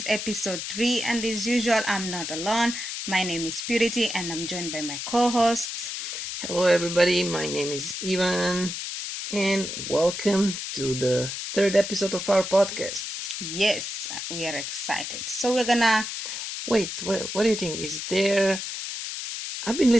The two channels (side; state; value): left; noise; hiss, 5 dB below the sound